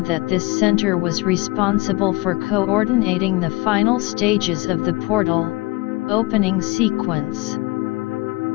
that this center was responsible for coordinating the final stages of the portal opening sequence.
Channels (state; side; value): quieter; right; 22.6 dB